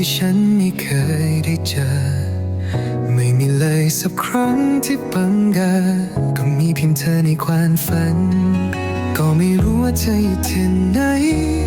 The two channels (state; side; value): identical; both; correlation 1.00